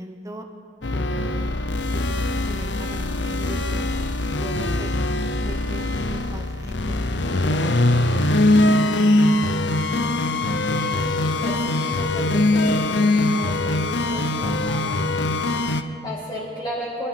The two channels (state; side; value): normal; both; correlation 0.65